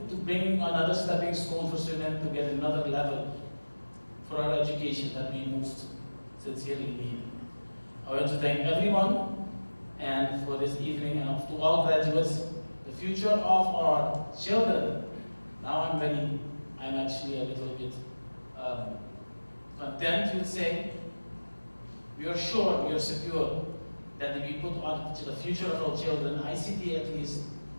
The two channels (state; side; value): inverted; both; correlation -1.00